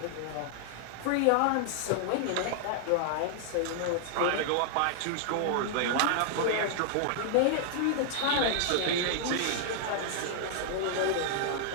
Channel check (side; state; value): both; different; correlation 0.00